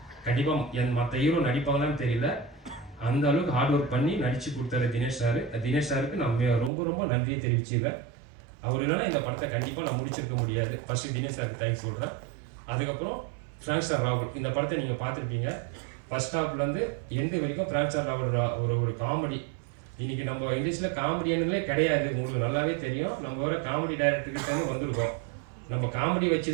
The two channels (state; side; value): drops out; left; at 6.7 s